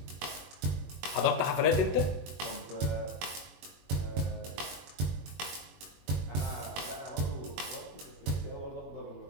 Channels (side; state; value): left; late; 21 ms